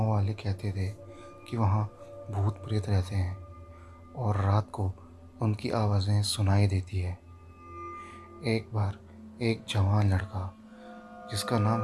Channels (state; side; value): identical; both; correlation 1.00